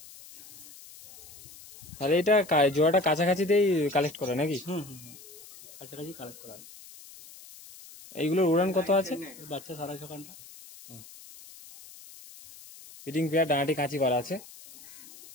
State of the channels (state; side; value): noise; left; hiss, 19 dB below the sound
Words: তাহলে এটা জোড়াটা কাছাকাছিতেই কালেক্ট করে নাকি? কাছাকাছি কালেক্ট করা হবে। এইগুলোর উড়ান কত আছে? বাচ্চা 6.5 ঘন্টা। ফিটিং পেয়ার, ডানাটি কাঁচি করা আছে।